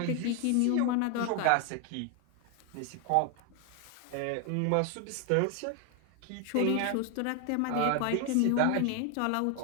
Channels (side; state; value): both; different; correlation 0.01